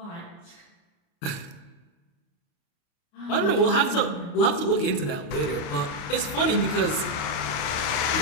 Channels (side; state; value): right; late; 29 ms